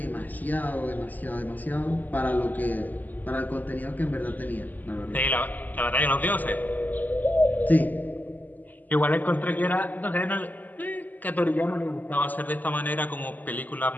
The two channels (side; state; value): right; late; 0.083 ms